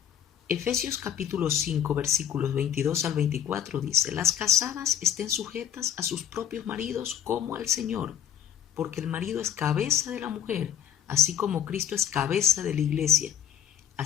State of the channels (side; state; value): right; quieter; 9.8 dB